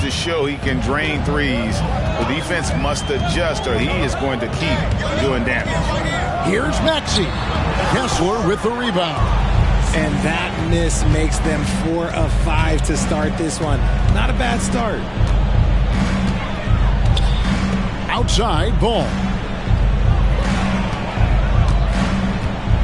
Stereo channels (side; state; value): both; identical; correlation 1.00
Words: show he can drain threes. The defense must adjust or he is going to keep doing damage. Here's Maxey. Kessler with the rebound. And that miss makes them 4 of 5 to start this one. Not a bad start. Outside, Ball.